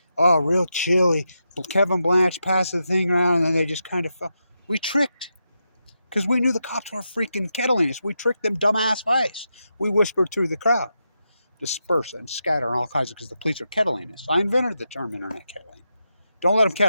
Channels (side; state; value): both; inverted; correlation -0.86